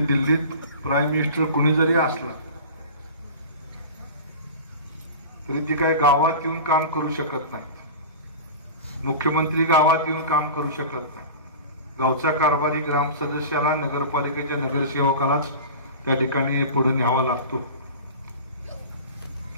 दिल्लीत प्राईम मिनिस्टर कुणी जरी असला तरी ती काही गावात येऊन काम करू शकत नाही. मुख्यमंत्री गावात येऊन काम करू शकत नाही. गावचा कारभारी ग्राम सदस्याला, नगरपालिकेच्या नगरसेवकालाच त्या ठिकाणी पुढे न्यावा लागतो.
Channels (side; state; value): both; inverted; correlation -0.34